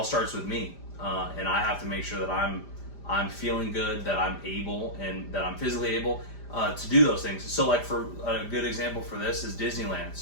starts with me, and I have to make sure that I'm feeling good, that I'm able, and that I'm physically able to do those things. So like, for a good example for this is Disneyland.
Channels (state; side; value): late; right; 5.0 ms